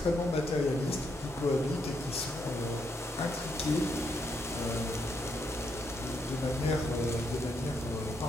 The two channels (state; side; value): normal; both; correlation 0.78